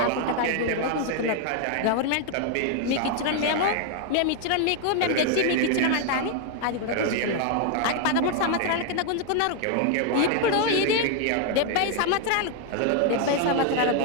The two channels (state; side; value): different; both; correlation 0.00